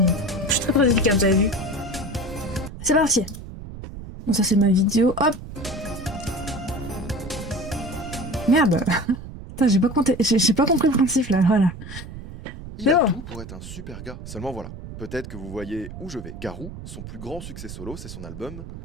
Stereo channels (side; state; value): right; noise; rumble, 12 dB below the sound